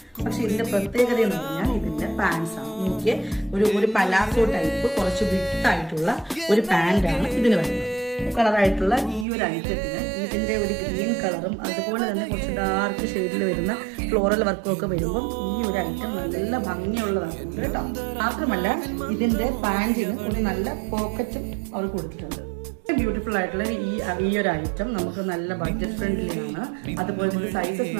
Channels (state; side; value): drops out; left; at 9.2 s